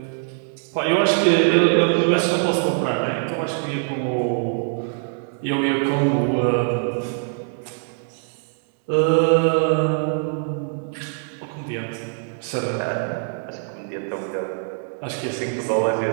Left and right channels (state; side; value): silent; left; 64 dB below the other